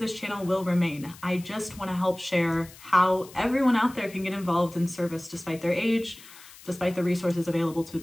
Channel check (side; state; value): left; noise; hiss, 20 dB below the sound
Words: channel will remain. I just wanna help share how everyone out there can get involved in service despite their age, despite the resources available to